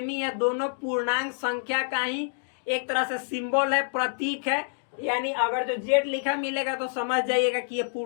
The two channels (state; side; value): silent; right; digital silence